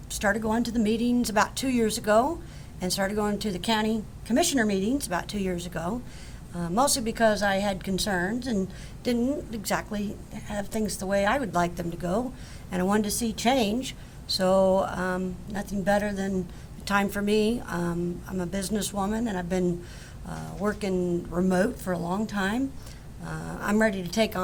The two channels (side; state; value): both; identical; correlation 1.00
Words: started going to the meetings about 2 years ago, and started going to the county commissioner meetings about 2 years ago, mostly because I had concerns and didn't exactly have things the way I would like them to go, and I wanted to see change. So nothing better than time for me. I'm a businesswoman, and I've been working remote for a long time. I'm ready to take